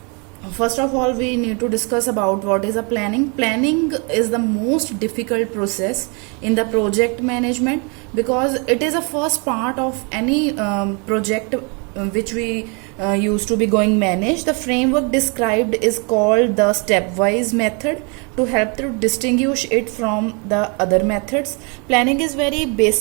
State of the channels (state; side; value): quieter; left; 33.8 dB